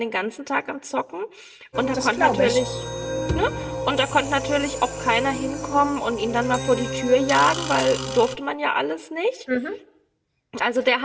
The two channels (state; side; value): identical; both; correlation 1.00